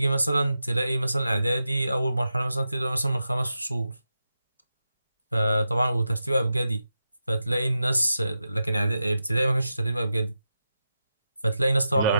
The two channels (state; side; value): inverted; both; correlation -0.89